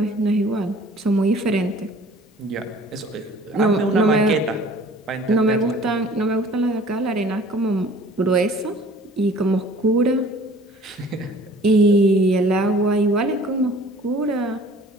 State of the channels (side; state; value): both; normal; correlation 0.50